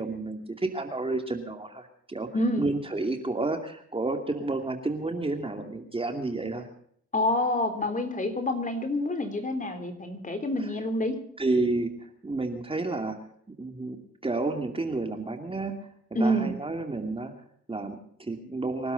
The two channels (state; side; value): normal; both; correlation 0.55